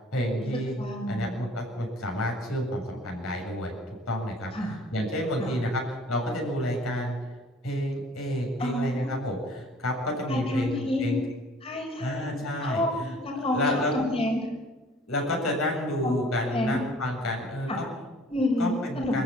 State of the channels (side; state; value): both; normal; correlation 0.53